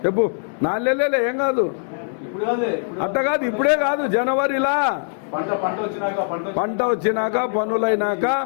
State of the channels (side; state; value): right; silent; digital silence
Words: చెప్పు. 4 నెలలే, ఏం కాదు. అట్ట కాదు, ఇప్పుడే కాదు, జనవరిలా పంట వచ్చినాక పనులైనాక